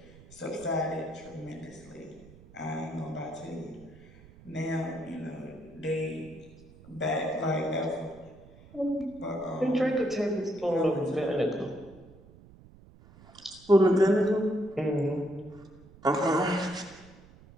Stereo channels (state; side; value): noise; right; rumble, 22 dB below the sound